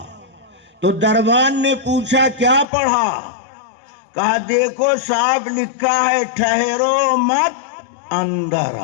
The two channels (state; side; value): drops out; right; at 2.7 s